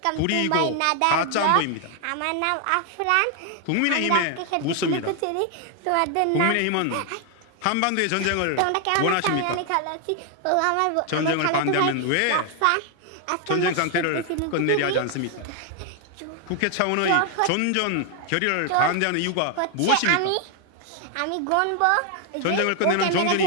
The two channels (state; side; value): different; both; correlation 0.00